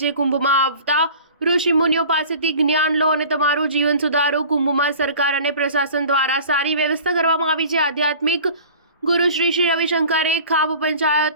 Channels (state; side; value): inverted; both; correlation -0.43